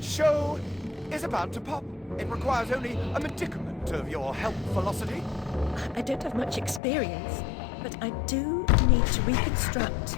show is about to pop. It requires only a medicament of your health velocity. I don't have much experience, but I do need to reconstruct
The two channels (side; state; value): right; drops out; at 6.8 s